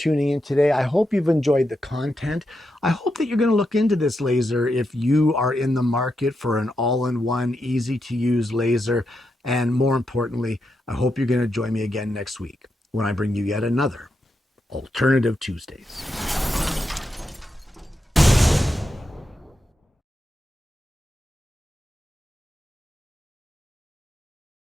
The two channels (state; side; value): normal; both; correlation 0.85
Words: in today. I hope you've enjoyed the content. I hope that you're going to look into this laser if you are in the market for an all-in-one, easy-to-use laser. And more importantly, I hope you're going to join me again next week when I bring you yet another Alternative Tuesdays.